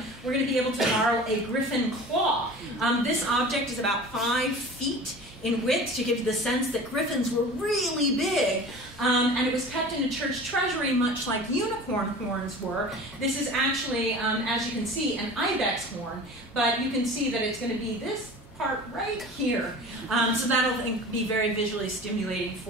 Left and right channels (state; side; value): normal; both; correlation 0.39